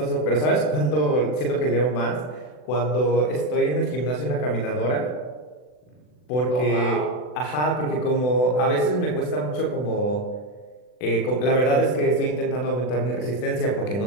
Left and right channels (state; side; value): late; right; 40 ms